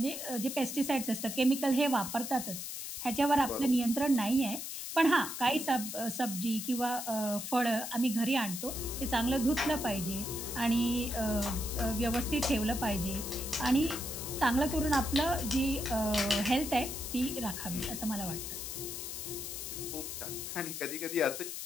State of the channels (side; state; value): left; noise; hiss, 6 dB below the sound